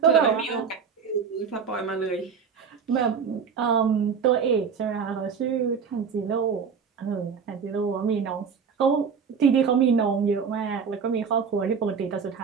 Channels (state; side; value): quieter; left; 6.3 dB